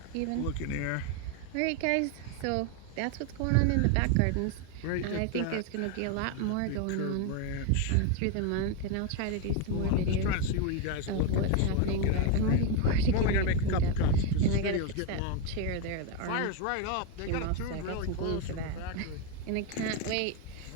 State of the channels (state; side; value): different; both; correlation 0.02